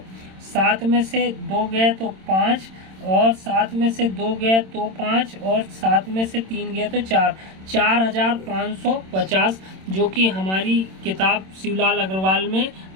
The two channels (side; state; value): left; late; 26 ms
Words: 7 में से 2 गया तो 5 और 7 में से 2 गया तो 5 और 7 में से 3 गया तो 4, 4,550, जो कि हमारी किताब शिवलाल अग्रवाल में